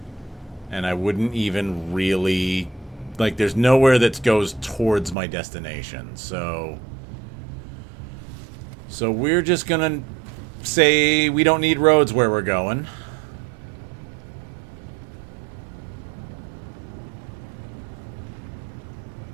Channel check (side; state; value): left; drops out; at 5.2 s